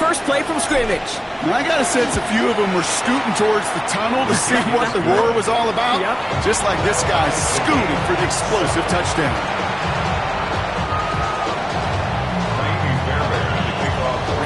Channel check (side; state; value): both; identical; correlation 1.00